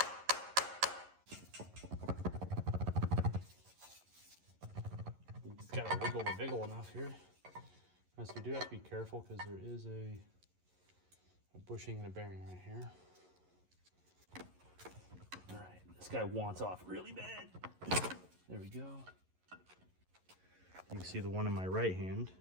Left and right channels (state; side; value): late; left; 11 ms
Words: It's got to wiggle the wiggle enough here. So we do have to be careful because there is a bushing and a bearing right here. All right, this guy wants off really bad. There we go. You can see the one in my right hand